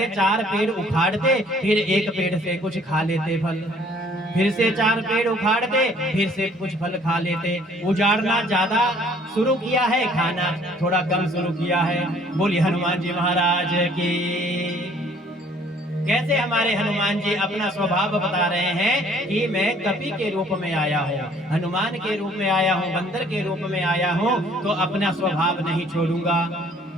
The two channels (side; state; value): both; normal; correlation 0.58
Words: 4 पेड़ उखाड़ते, फिर एक पेड़ से कुछ खा लेते फल, फिर से 4 पेड़ उखाड़ते, फिर से कुछ फल खा लेते। उजाड़ना ज्यादा शुरू किया है, खाना थोड़ा कम शुरू किया है। बोलिए हनुमान जी महाराज की। कैसे हमारे हनुमान जी अपना स्वभाव बता रहे हैं कि मैं कपि के रूप में आया हूँ, हनुमान के रूप में आया हूँ, बंदर के रूप में आया हूँ, तो अपना स्वभाव नहीं छोड़ूंगा।